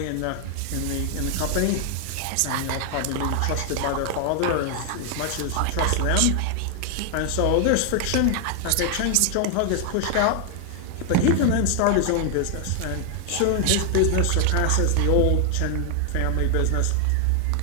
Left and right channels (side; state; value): both; different; correlation 0.00